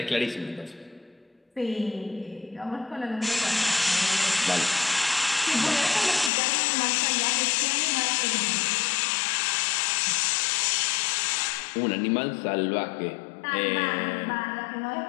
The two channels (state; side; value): drops out; right; at 6.3 s